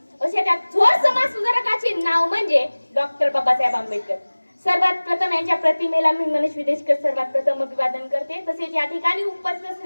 अशा त्या थोर समाज सुधारकाचे नाव म्हणजे डॉक्टर बाबासाहेब आंबेडकर. सर्वात प्रथम यांच्या प्रतिमेला मी मनीष विदेशकर सर्वात प्रथम अभिवादन करते. तसेच या ठिकाणी उपस्थित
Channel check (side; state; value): both; inverted; correlation -1.00